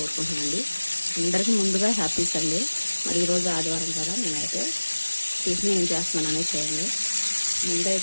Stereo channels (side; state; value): both; inverted; correlation -1.00